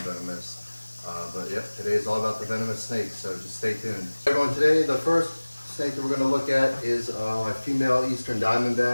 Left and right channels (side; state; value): both; inverted; correlation -1.00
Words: But yep, today is all about the venomous snakes, so just stay tuned. Everyone, today the first snake that we're going to look at is my female eastern